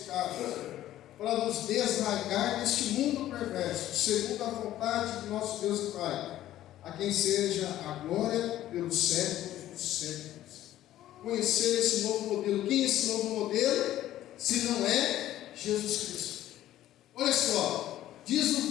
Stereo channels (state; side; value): quieter; right; 13.4 dB